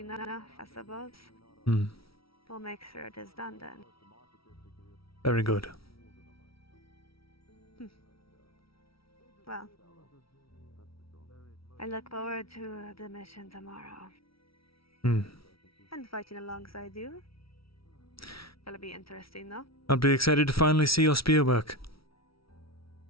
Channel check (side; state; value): right; late; 0.75 ms